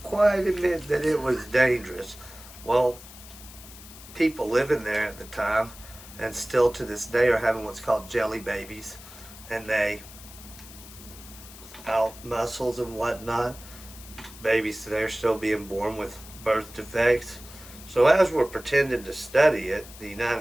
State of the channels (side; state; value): left; noise; hiss, 17 dB below the sound